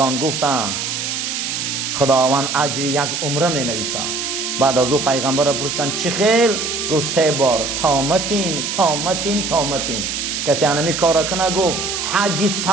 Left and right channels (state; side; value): noise; right; hiss, 3 dB below the sound